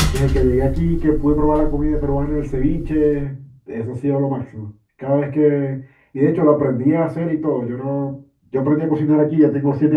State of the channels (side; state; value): both; identical; correlation 1.00